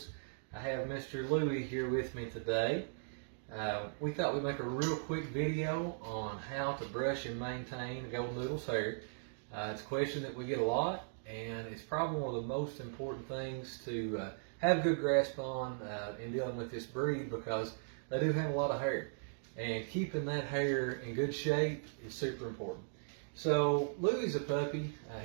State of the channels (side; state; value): left; silent; digital silence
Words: I have Mr. Louie here with me today. We thought we'd make a real quick video on how to brush and maintain a Goldendoodle's hair. It's a question that we get a lot, and it's probably one of the most important things to have a good grasp on in dealing with this breed, because they do have a lot of hair, and keeping that hair in good shape is super important. So Louie's a puppy.